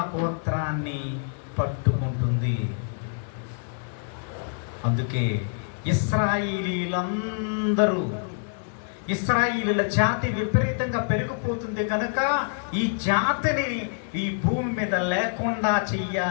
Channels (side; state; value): right; silent; 56 dB below the other